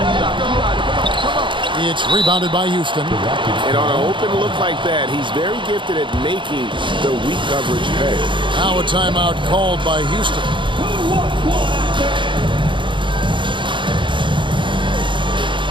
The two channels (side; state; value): left; late; 0.24 ms